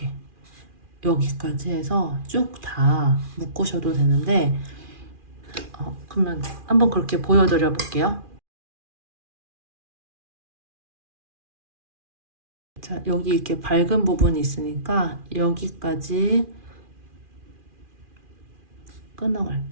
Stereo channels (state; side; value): late; left; 2.4 ms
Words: 여기까지 해서 쭉 다 묶으셔도 되는데 그러면 한번 그렇게 보여드려 볼게요. 자, 여기 이렇게 밝은 부분이 있으니까 여기까지